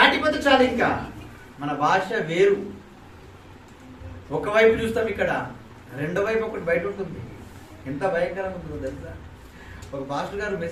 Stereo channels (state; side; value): identical; both; correlation 1.00